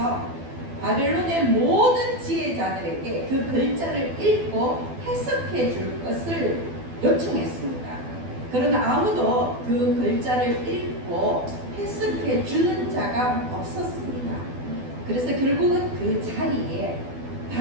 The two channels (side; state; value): left; late; 12 ms